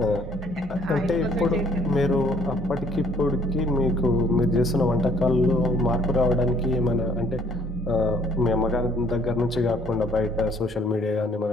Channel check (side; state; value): both; normal; correlation 0.61